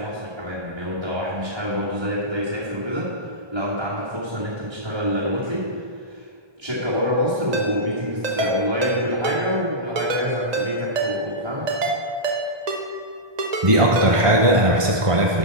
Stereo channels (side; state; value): left; late; 1.2 ms